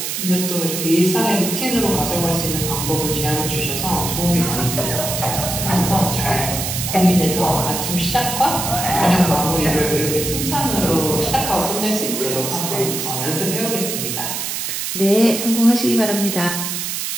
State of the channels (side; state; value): right; noise; hiss, 3 dB below the sound